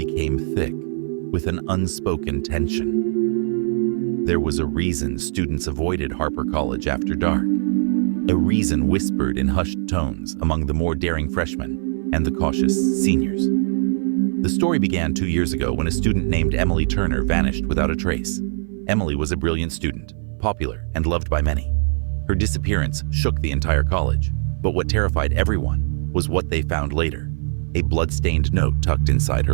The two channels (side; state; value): left; silent; 57 dB below the other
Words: thick with an unspoken tension. There was a reason students avoided Harper College after dark, a reason whispered in hushed tones among the more daring freshmen and the cautious seniors. The story began 2 years ago when a student named Emily Turner vanished without a trace. Emily was a brilliant student, popular and loved by many. Her disappearance shook the entire college, but what terrified everyone was what they found later, a blood-stained note tucked inside